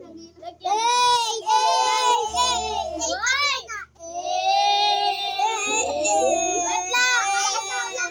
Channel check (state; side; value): identical; both; correlation 1.00